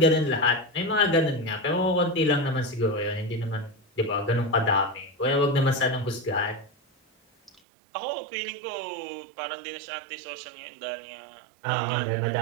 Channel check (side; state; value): left; drops out; at 7.6 s